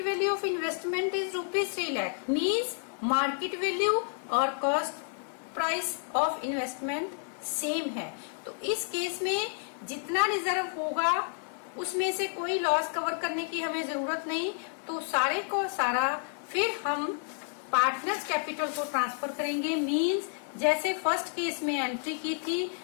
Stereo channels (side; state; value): right; silent; 58 dB below the other